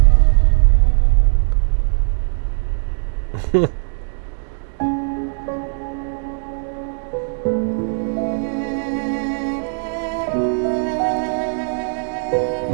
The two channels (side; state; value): left; silent; 66 dB below the other